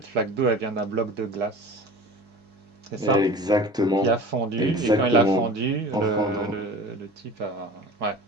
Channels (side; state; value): both; normal; correlation 0.39